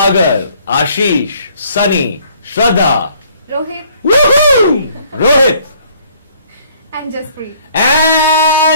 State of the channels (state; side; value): inverted; both; correlation -0.60